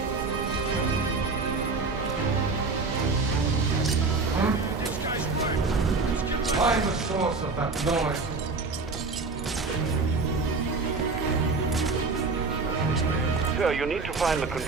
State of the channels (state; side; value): quieter; left; 4.0 dB